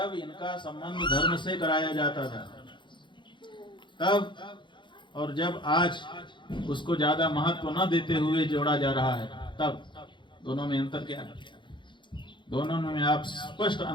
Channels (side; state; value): right; late; 0.23 ms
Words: इनका संबंध धर्म से कराया जाता था तब, और जब आज उसको ज्यादा महत्व न देते हुए जोड़ा जा रहा है तब, दोनों में अंतर क्या है? दोनों में आप स्पष्ट